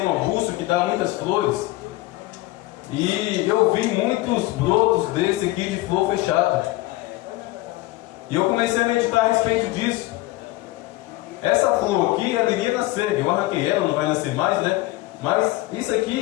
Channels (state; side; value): quieter; right; 18.8 dB